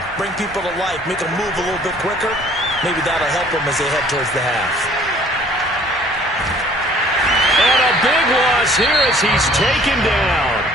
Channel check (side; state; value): both; normal; correlation 0.55